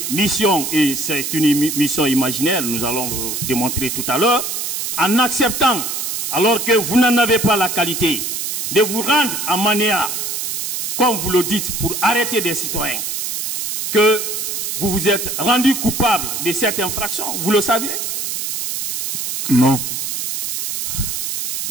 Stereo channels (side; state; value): right; noise; hiss, 3 dB below the sound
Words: mission, et c'est une mission imaginaire, nous allons le démontrer tout à l'heure, en acceptant, alors que vous n'en avez pas la qualité, de vous rendre à Manéa, comme vous le dites, pour arrêter des citoyens, que vous vous êtes rendu coupable de cette infraction, vous le saviez? Non.